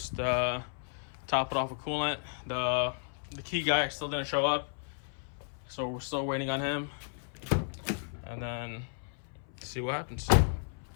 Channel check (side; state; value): right; silent; 56 dB below the other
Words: top it off with coolant. The key guy still didn't show up, so we're still waiting on him, and then see what happens.